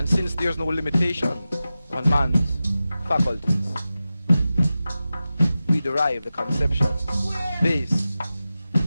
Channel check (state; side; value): inverted; both; correlation -0.93